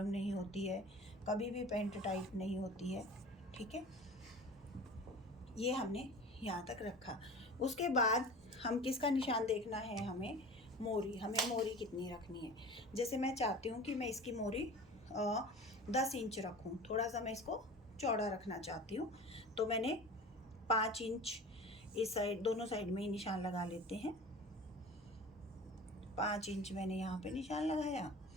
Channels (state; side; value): normal; both; correlation 0.38